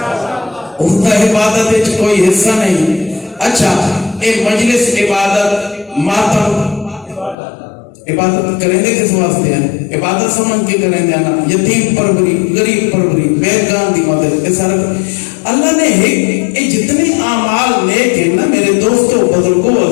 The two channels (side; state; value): right; drops out; at 7.4 s